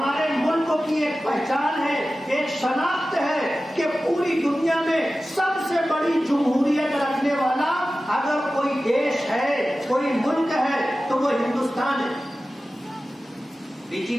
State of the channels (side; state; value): both; normal; correlation 0.95